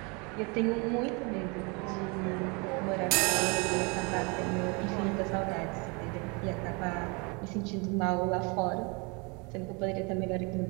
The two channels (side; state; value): left; quieter; 30.6 dB